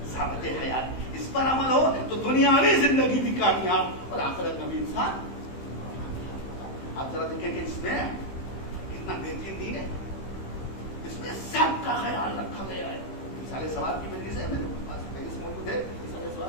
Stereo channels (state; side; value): late; right; 15 ms